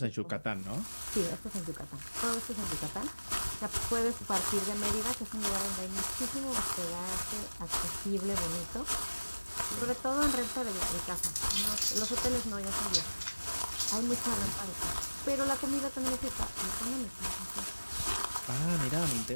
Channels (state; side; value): inverted; both; correlation -1.00